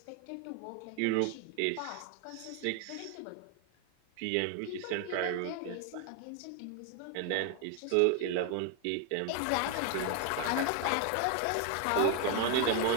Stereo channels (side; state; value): both; different; correlation 0.01